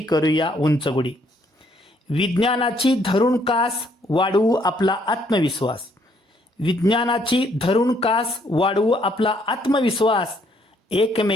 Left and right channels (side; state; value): both; normal; correlation 0.68